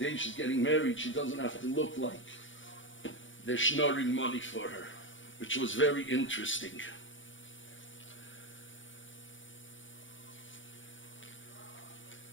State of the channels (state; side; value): late; right; 0.56 ms